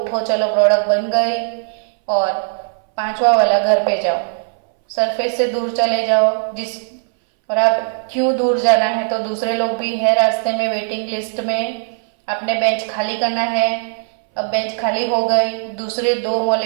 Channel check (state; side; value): silent; left; 64 dB below the other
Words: चलो प्रोडक्ट बन गई, और पांचवा वाला घर पे जाओ, सरफेस से दूर चले जाओ। और आप क्यों दूर जाना है, तो दूसरे लोग भी है रास्ते में वेटिंग लिस्ट में, आपने बेंच खाली करना है। अब बेंच खाली हो गई, दूसरे 2